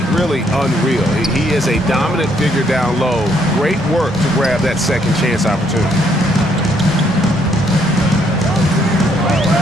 really unreal. He is a dominant figure down low. Great work to grab that second chance opportunity.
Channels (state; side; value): normal; both; correlation 0.70